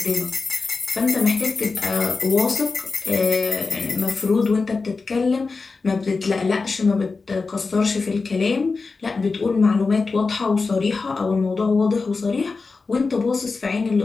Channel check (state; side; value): quieter; right; 4.2 dB